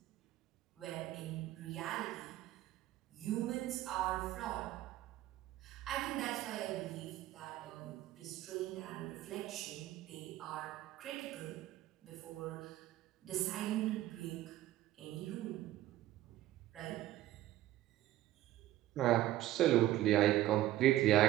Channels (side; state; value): left; quieter; 14.5 dB